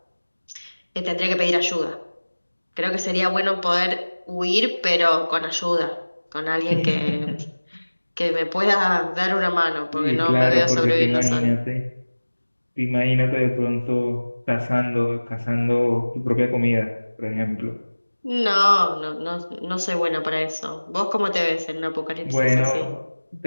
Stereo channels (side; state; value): both; inverted; correlation -1.00